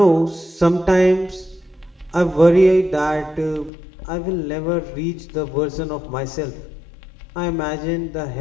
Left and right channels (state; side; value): drops out; right; at 3.7 s